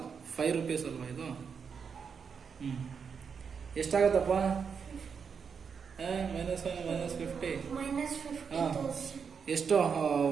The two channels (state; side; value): quieter; left; 6.3 dB